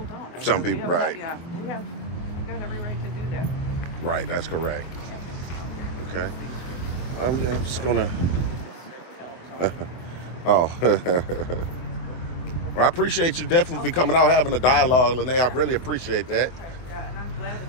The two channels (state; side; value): late; right; 24 ms